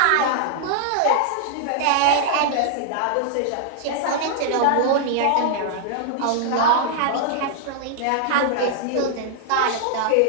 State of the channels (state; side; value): different; both; correlation -0.01